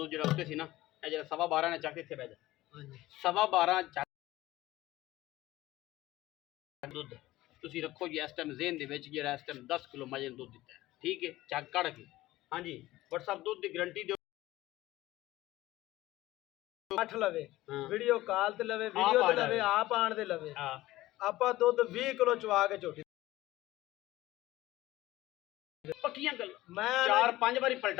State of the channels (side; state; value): right; quieter; 16.9 dB